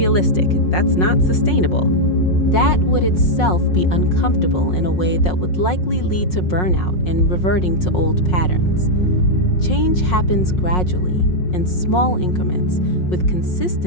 That's not sustainable. That would itself be uncomfortable in a way that would likely lead to burnout and reverting to old patterns. Change happens gradually, in small increments, with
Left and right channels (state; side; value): late; right; 5.5 ms